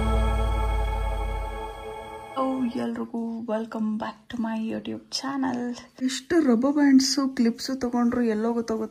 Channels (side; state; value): both; identical; correlation 1.00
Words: ಎಲ್ರಿಗೂ welcome back to my YouTube channel. ಎಷ್ಟು ರಬ್ಬರ್ ಬ್ಯಾಂಡ್ಸು ಕ್ಲಿಪ್ಸು ತಗೊಂಡ್ರು ಎಲ್ಲೋ